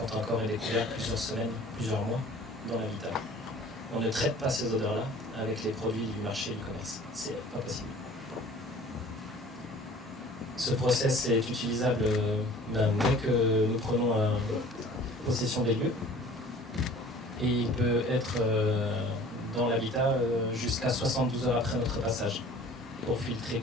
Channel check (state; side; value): normal; both; correlation 0.47